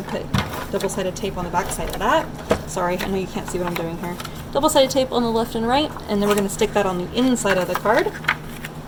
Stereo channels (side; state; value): both; identical; correlation 1.00